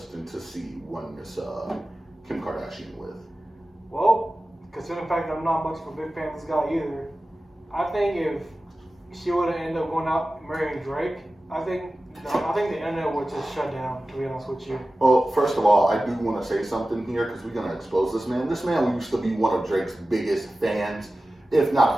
to see one Miss Kim Kardashian with? Well, considering the fact that I'm not much of a big fan of this guy either, I think if she would have ended up going out marrying Drake, I think the internet would just shut down, to be honest with you. Well, first of all, I do want to say something here because we're going to expose this man. This man used to be one of Drake's biggest fans, if not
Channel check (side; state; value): both; normal; correlation 0.95